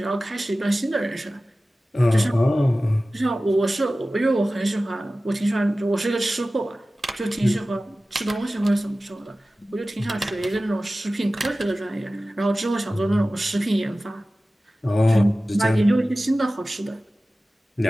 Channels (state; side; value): normal; both; correlation 0.96